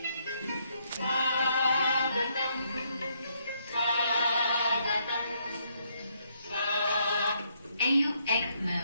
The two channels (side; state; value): both; inverted; correlation -0.73